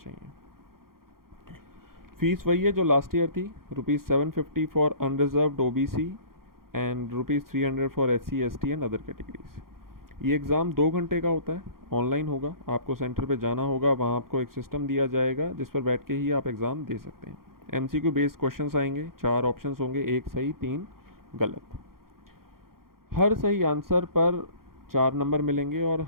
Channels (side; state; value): left; late; 0.92 ms